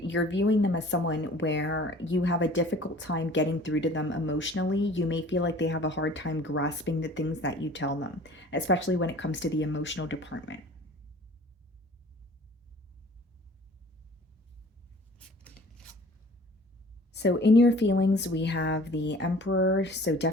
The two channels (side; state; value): both; normal; correlation 0.48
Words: viewing them as someone where you have a difficult time getting through to them emotionally. You may feel like they have a hard time grasping the things that you tell them, especially when it comes to the emotional department. So, in your feelings, we have the Emperor. So,